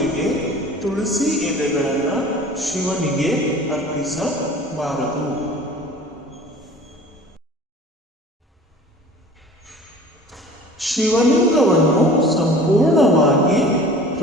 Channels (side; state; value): both; normal; correlation 0.44